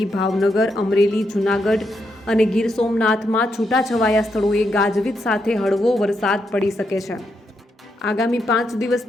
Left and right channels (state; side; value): normal; both; correlation 0.81